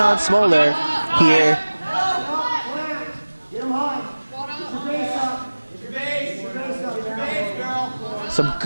Smoller here. Some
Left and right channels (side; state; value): both; inverted; correlation -1.00